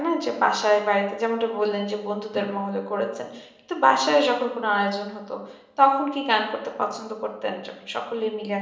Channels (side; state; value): both; identical; correlation 1.00